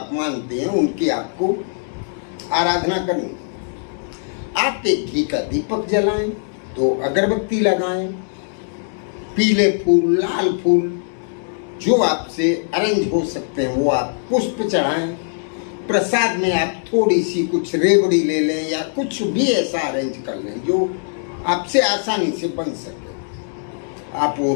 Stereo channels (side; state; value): right; silent; 65 dB below the other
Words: मानते हैं, उनकी आपको आराधना करनी। आप एक घी का दीपक जलाएं, 2 अगरबत्ती लगाएं, पीले फूल, लाल फूल जो आपसे अरेंज हो सकते हैं वो आप पुष्प चढ़ाएं। प्रसाद में आप थोड़ी सी कुछ रेवड़ी ले लें या कुछ भी ऐसा अरेंज कर लें जो आपसे आसानी से बन सके। आप वो